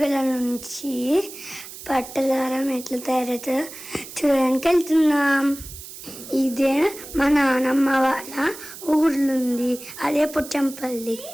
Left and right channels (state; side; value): noise; right; hiss, 14 dB below the sound